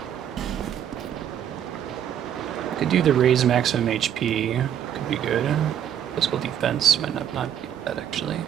Could do the raise maximum HP. Could be good. Physical defense might not be bad, actually.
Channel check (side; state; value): left; quieter; 9.8 dB